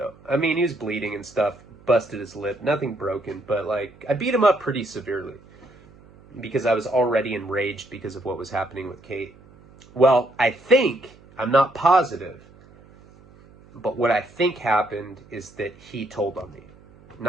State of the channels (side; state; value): right; noise; hum, 25 dB below the sound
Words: I mean, he was bleeding and stuff, busted his lip, nothing broken, but, like, I beat him up pretty severely because I was already enraged because of what was happening with Kate. Well, I'm not positive, but what I think happened is that he told on me.